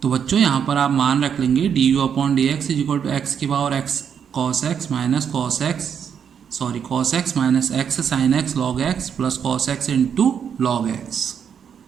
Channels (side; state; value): left; quieter; 7.7 dB